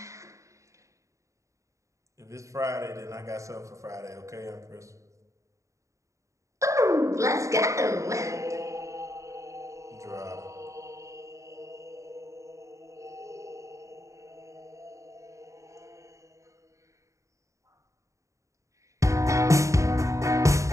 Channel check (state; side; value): late; left; 0.15 ms